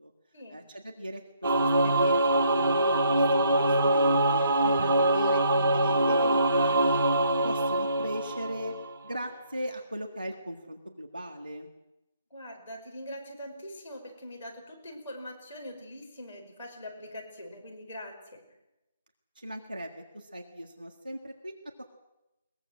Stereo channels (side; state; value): both; inverted; correlation -0.66